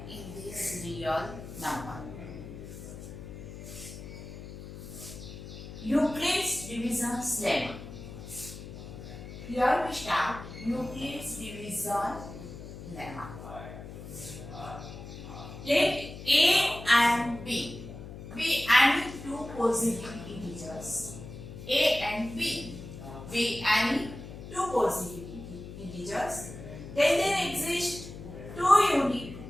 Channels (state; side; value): noise; left; hum, 12 dB below the sound